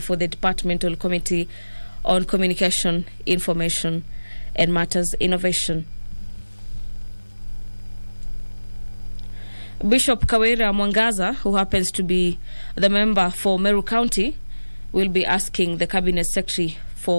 the Departmental Committee on Communication, Information and Matters Innovation. Bishop Kawira Mwangaza, who happens to be the member for Meru County, will be asking the Cabinet Secretary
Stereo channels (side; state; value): both; inverted; correlation -1.00